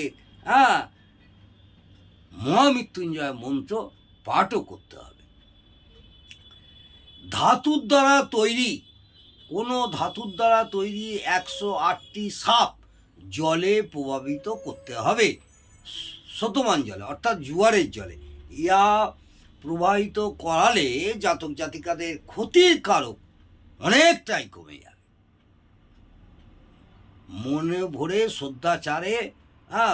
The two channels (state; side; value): identical; both; correlation 1.00